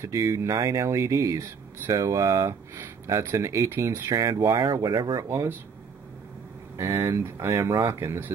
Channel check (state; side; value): quieter; left; 5.9 dB